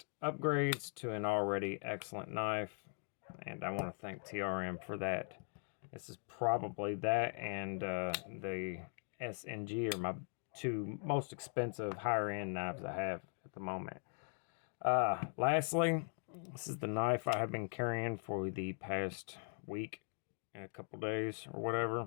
upgrades to an already excellent knife, and I want to thank TRM for that. This is probably that and the SNG are my two most expensive higher end knives I have at the moment. Lastly, this is the knife I have been carrying for the past week and a couple days or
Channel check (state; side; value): silent; right; 51 dB below the other